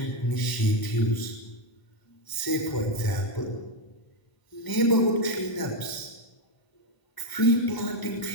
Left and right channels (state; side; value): late; right; 1.0 ms